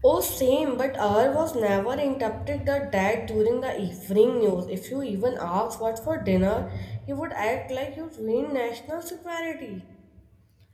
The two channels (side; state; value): both; identical; correlation 1.00